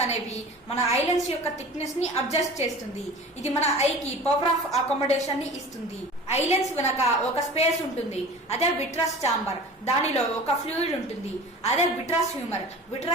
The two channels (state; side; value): normal; both; correlation 0.39